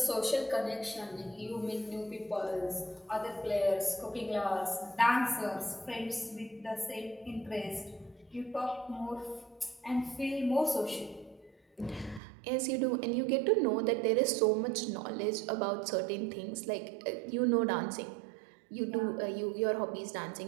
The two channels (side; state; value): left; drops out; at 12.2 s